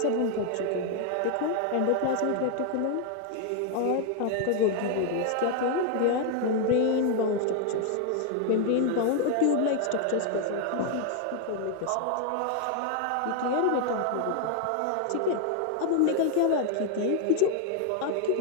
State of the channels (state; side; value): different; both; correlation 0.00